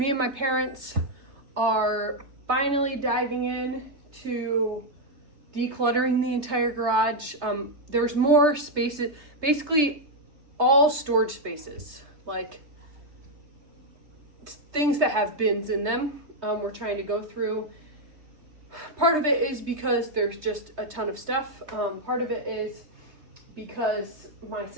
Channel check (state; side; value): late; left; 3.3 ms